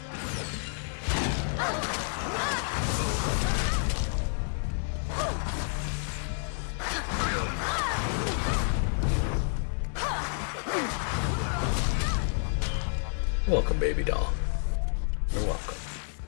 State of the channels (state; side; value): silent; right; 57 dB below the other